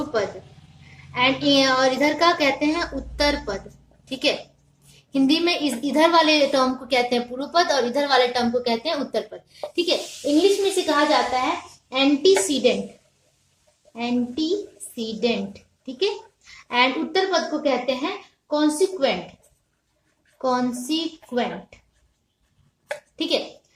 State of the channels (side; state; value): both; identical; correlation 1.00